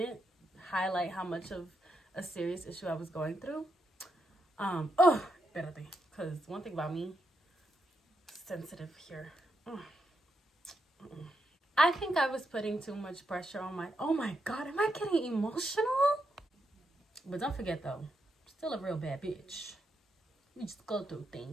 highlight how much of a serious issue I was going through. Espérate, because one thing about me, sensitive here. I think I was putting too much pressure on my, oh my God, am I getting emotional? But don't forget though, still a real bad bitch. We just go through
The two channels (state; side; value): normal; both; correlation 0.82